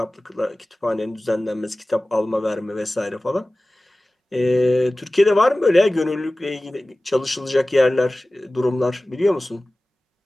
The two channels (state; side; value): normal; both; correlation 0.97